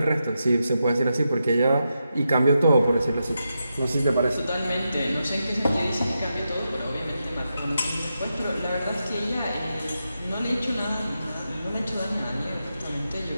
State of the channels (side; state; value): both; inverted; correlation -0.87